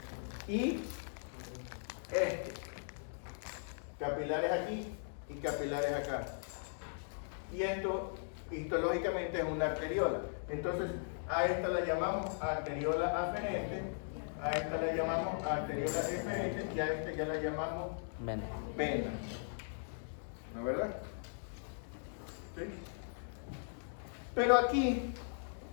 y capilares aquí y capilares acá. Y esto histológicamente es una arteriola. Entonces a esta la llamamos arteriola aferente, a esta la llamamos arteriola eferente y a esta ya la llamamos Vena. vena. ¿No es verdad? ¿Sí? Pero aquí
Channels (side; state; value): right; silent; digital silence